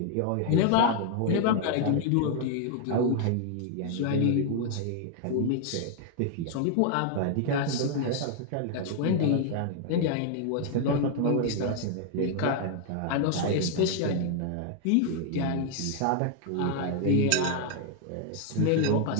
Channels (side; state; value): both; different; correlation 0.00